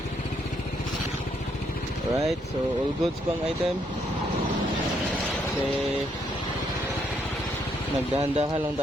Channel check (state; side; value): normal; both; correlation 0.73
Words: Alright, so all goods pang item. Kasi nagdahan-dahan lang